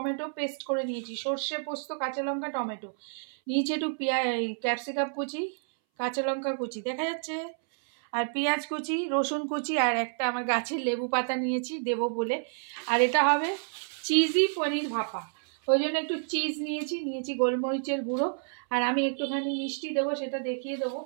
পেস্ট করে নিয়েছি। সর্ষে পোস্ত, কাঁচা লঙ্কা, টমেটো নিয়েছি, একটু ক্যাপসিকাম কুচি, কাঁচা লঙ্কা কুচি দেখা যাচ্ছে, আর পেঁয়াজ কুচি, রসুন কুচি, আর একটা আমার গাছের লেবু পাতা নিয়েছি দেবো বলে। আর এটা হবে চিজি পনির ভাপা, ওই জন্য একটু চিজ নিয়েছি গোলমরিচের গুঁড়ো, আর আমি একটুখানি মিষ্টি দেবো, সেটা দেখিয়ে দেবো।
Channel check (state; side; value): silent; left; 58 dB below the other